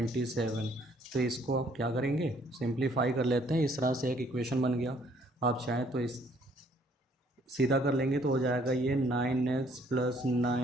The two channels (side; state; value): both; normal; correlation 0.63